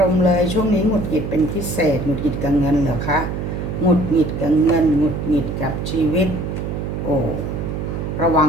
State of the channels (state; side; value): noise; right; hum, 4 dB below the sound